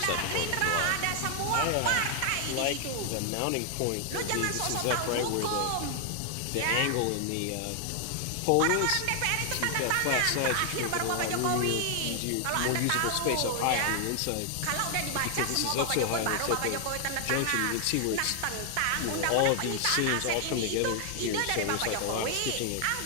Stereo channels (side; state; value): both; different; correlation 0.00